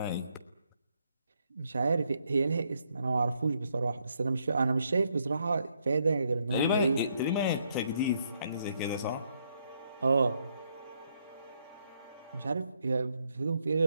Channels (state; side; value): inverted; both; correlation -0.74